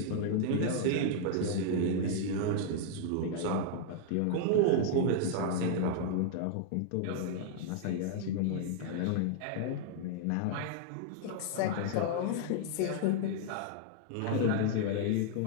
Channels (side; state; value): both; different; correlation -0.01